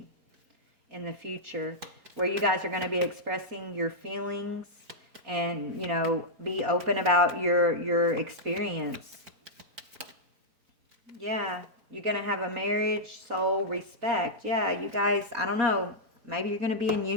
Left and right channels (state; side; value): late; left; 4.5 ms